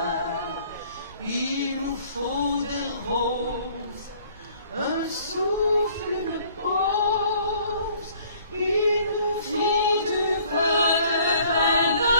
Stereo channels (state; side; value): inverted; both; correlation -0.57